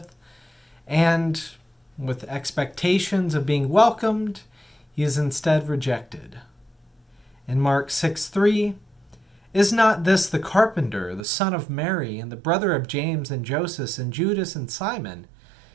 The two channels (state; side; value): drops out; left; at 11.2 s